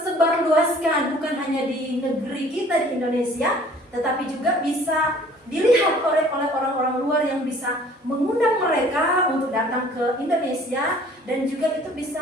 luaskan, bukan hanya di negeri kita di Indonesia, tetapi juga bisa dilihat oleh orang-orang luar yang bisa mengundang mereka untuk datang ke Indonesia, dan juga itu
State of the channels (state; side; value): normal; both; correlation 0.53